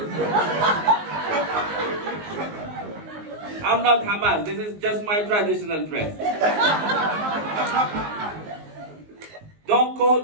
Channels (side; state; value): left; late; 19 ms